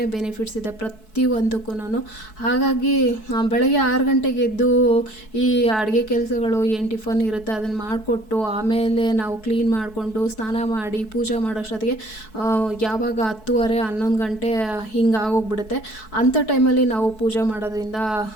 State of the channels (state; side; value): late; right; 4.6 ms